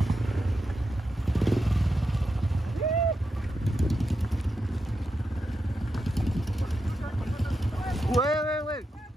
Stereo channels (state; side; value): normal; both; correlation 0.87